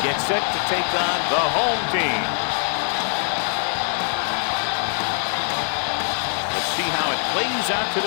gets set to take on the home team. Let's see how it plays out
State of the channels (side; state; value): right; silent; digital silence